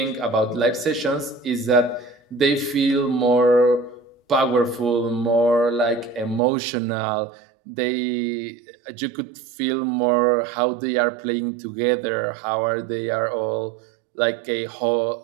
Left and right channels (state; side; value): drops out; left; at 6.4 s